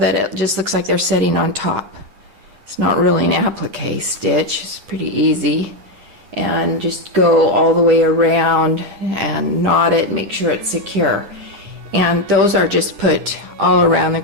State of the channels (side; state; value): left; late; 9.9 ms